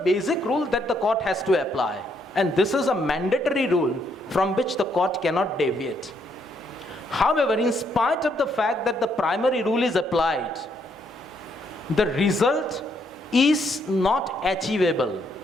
basic rule that the court has to apply. And this is a mandatory rule from which the court cannot deviate. However, in spite of the fact that the primary rule is applied, the result is not achievable.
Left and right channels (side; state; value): both; normal; correlation 0.73